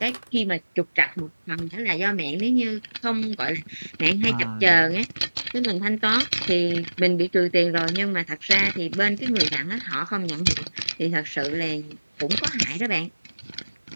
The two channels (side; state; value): both; inverted; correlation -1.00